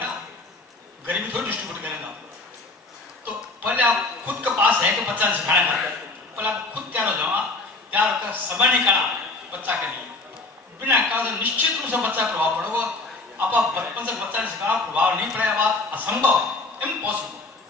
गरीबी थोड़ी डिस्ट्रीब्यूट करेगा। तो पहले आप खुद के पास है कि बच्चा ने सिखाना है पहले आप खुद तैयार हो जाओ। तैयार होकर समय निकाला बच्चा के लिए बिना कहा तो निश्चित रूप से बच्चा प्रभाव पड़ेगा। आप बचपन से बच्चा ने सिखाना प्रभाव नहीं पड़ेगा बात असंभव इम्पॉसिबल।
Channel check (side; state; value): right; quieter; 3.3 dB